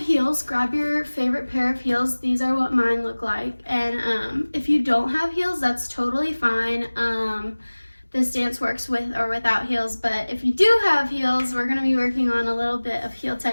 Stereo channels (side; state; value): both; inverted; correlation -1.00